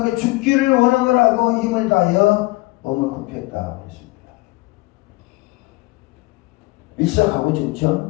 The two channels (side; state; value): right; quieter; 22.6 dB